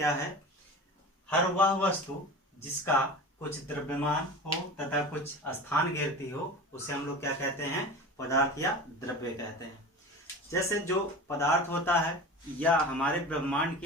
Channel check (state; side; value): normal; both; correlation 0.33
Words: है? हर वह वस्तु जिसका कुछ द्रव्यमान हो तथा कुछ स्थान घेरती हो उसे हम लोग क्या कहते हैं? पदार्थ या द्रव्य कहते हैं। जैसे जो पदार्थ होता है या हमारे ब्रह्मांड की